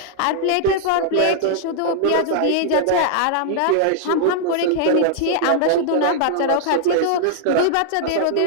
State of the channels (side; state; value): both; different; correlation -0.01